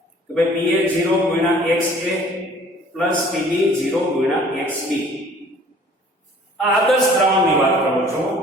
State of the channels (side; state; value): both; normal; correlation 0.53